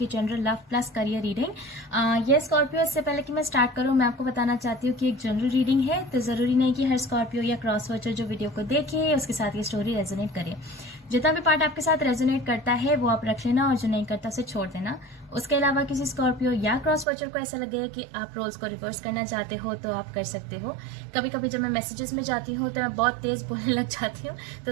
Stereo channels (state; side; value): drops out; left; at 17.1 s